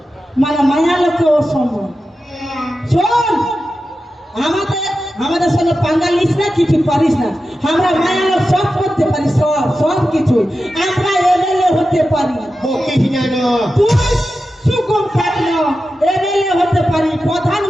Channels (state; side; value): normal; both; correlation 0.92